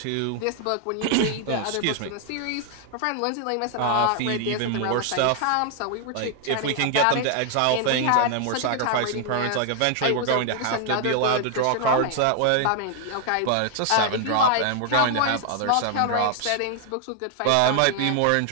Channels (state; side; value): different; both; correlation 0.00